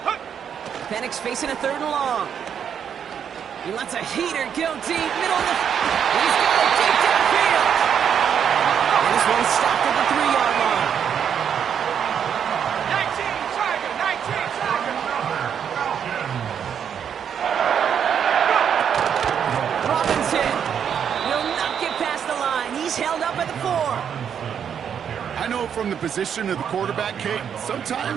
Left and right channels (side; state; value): left; quieter; 8.1 dB